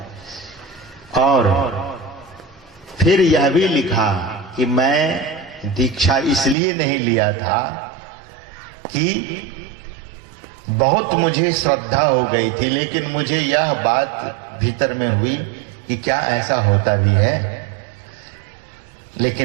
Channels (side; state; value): left; drops out; at 6.6 s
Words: और फिर यह भी लिखा कि मैं दीक्षा इसलिए नहीं लिया था कि बहुत मुझे श्रद्धा हो गई थी, लेकिन मुझे यह बात भीतर में हुई कि क्या ऐसा होता भी है।